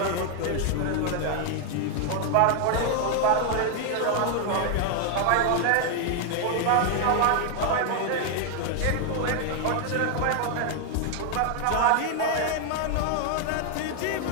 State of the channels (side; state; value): both; different; correlation 0.00